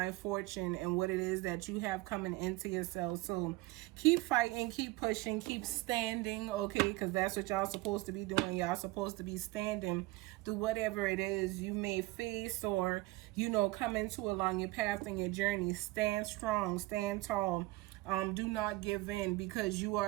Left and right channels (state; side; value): quieter; left; 20.2 dB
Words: fortune and what it is that you have coming into yourself. So keep fighting, keep pushing, keep standing, okay? Because that's what y'all supposed to be doing. Y'all supposed to be standing through whatever it is you may face or, come into along your path and your journey. Stand strong, stand tall. Do not give in, because you